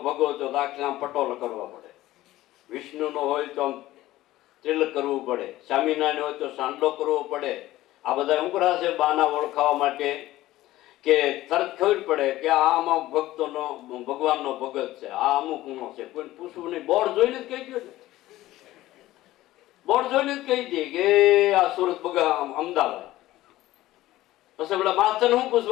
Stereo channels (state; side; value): quieter; right; 16.1 dB